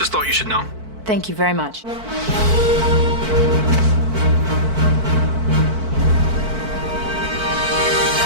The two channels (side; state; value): left; late; 4.5 ms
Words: thought you should know. Thank you very much.